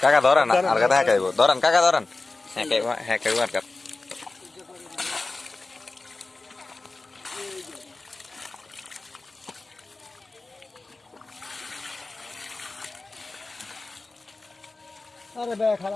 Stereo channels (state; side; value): quieter; right; 3.3 dB